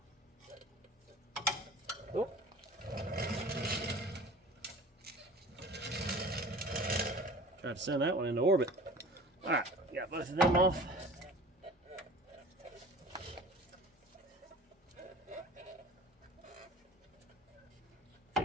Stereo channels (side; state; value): both; normal; correlation 0.42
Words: Oh. Try to send that one into orbit. Alright, got both of them off.